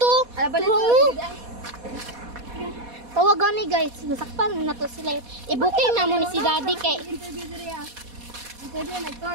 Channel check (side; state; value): left; late; 4.2 ms